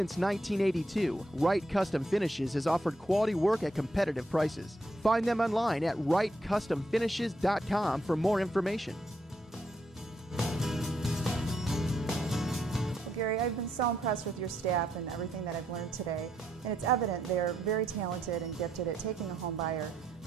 1982, Wright Custom Finishes has offered quality work at competitive prices. Find them online at wrightcustomfinishes.com for more information. Gary, I've been so impressed with your staff and everything that I've learned today, and it's evident they're very talented and gifted at taking a home buyer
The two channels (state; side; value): normal; both; correlation 0.77